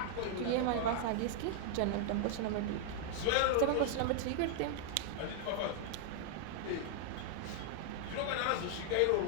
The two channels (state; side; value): different; both; correlation 0.00